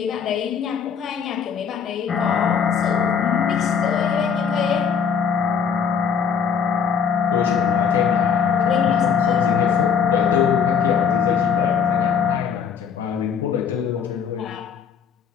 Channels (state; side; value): quieter; right; 6.9 dB